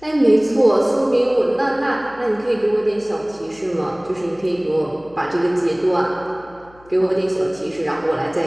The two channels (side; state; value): left; noise; hum, 27 dB below the sound